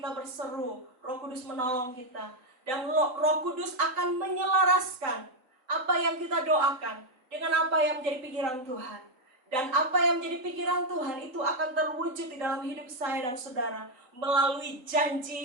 berseru, Roh Kudus menolong kita. Dan Roh Kudus akan menyelaraskan apa yang kita doakan dengan apa yang menjadi pikiran Tuhan. Dan apa yang menjadi pikiran Tuhan itu akan terwujud di dalam hidup saya dan saudara melalui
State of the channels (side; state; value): left; late; 3.9 ms